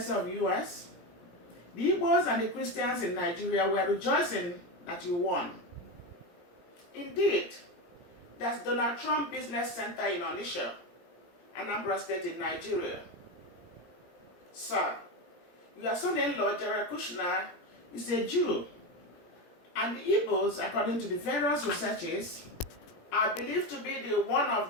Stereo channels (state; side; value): late; right; 17 ms